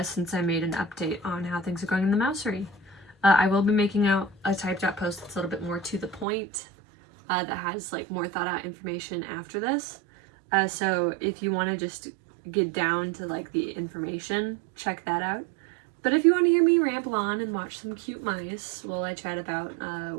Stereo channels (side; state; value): left; drops out; at 6.2 s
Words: since I made an update on how things are going in the Mousery. I will be making out a typed out post that's a little bit more to the point, that has like more thought out information after this. So if you want to just get down to like the information, check that out. But if you want to hear me ramble on and watch some cute mice while I chat about